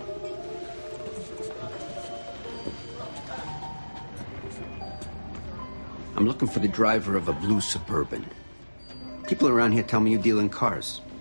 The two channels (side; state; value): both; inverted; correlation -1.00